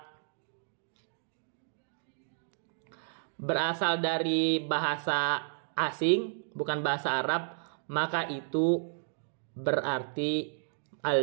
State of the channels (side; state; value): left; silent; digital silence